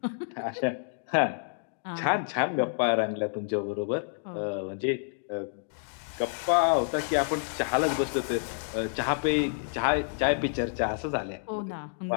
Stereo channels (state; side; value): silent; right; digital silence